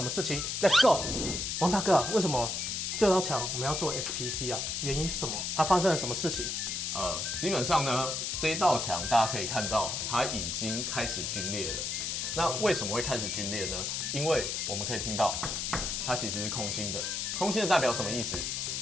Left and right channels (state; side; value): noise; left; hiss, 2 dB below the sound